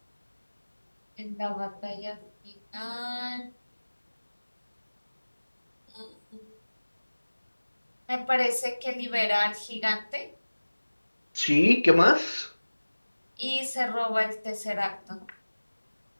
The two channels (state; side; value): inverted; both; correlation -1.00